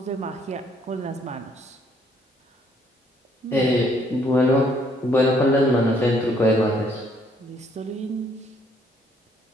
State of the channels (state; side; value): normal; both; correlation 0.66